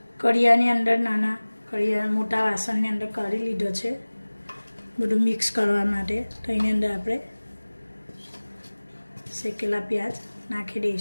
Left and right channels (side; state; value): both; inverted; correlation -1.00